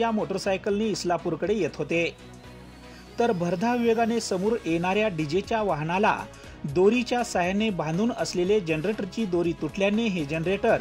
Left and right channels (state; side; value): identical; both; correlation 1.00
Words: मोटरसायकलने इस्लापूरकडे येत होते. तर भरधाव वेगाने समोर येणाऱ्या डीजेच्या वाहनाला दोरीच्या साहाय्याने बांधून असलेले जनरेटरची दोरी तुटल्याने हे